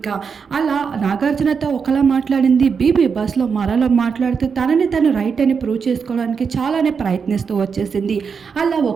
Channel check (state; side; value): quieter; left; 5.9 dB